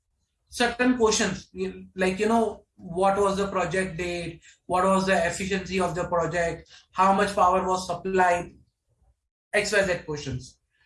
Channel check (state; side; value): identical; both; correlation 1.00